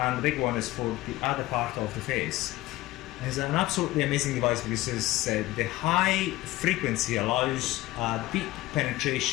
the big one is for the other part of the face. It's an absolutely amazing device because the high frequency allows deep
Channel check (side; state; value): right; quieter; 17.9 dB